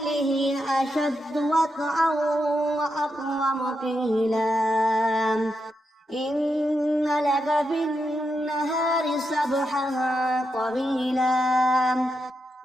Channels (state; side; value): normal; both; correlation 0.85